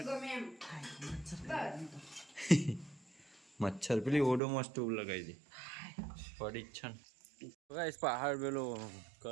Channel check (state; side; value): drops out; left; at 4.4 s